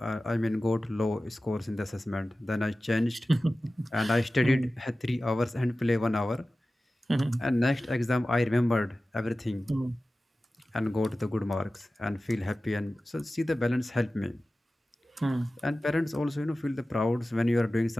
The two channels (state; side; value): normal; both; correlation 0.96